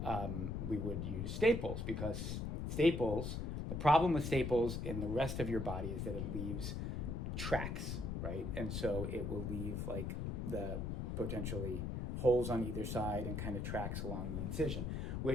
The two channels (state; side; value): noise; left; rumble, 2 dB below the sound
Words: we would use staples because the problem with staples in the rest of your body is that it leaves tracks, right? And so it will leave like the potentially holes on either side and kind of tracks along the incision,